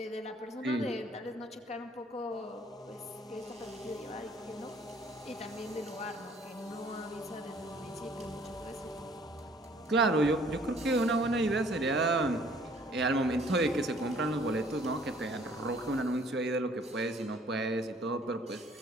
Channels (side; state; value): both; normal; correlation 0.58